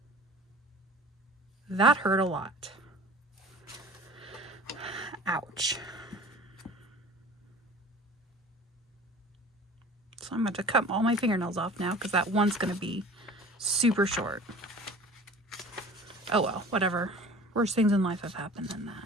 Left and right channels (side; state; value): both; normal; correlation 0.43